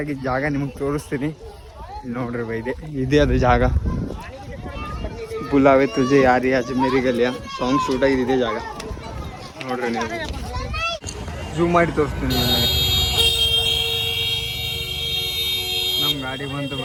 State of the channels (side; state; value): both; identical; correlation 1.00